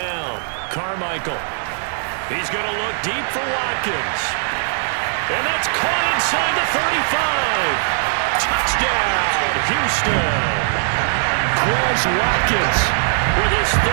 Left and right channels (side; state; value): left; silent; digital silence